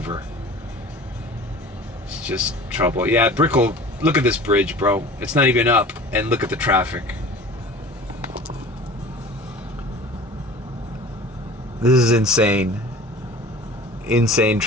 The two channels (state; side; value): normal; both; correlation 0.41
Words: It's just trouble. Yeah, Brickell, look at this bridge, bro. It's not even up, and look at the traffic. This is insane. Insane